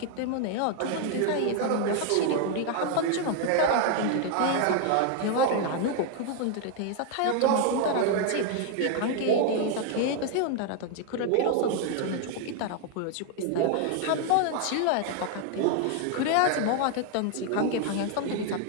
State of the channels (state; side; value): different; both; correlation 0.00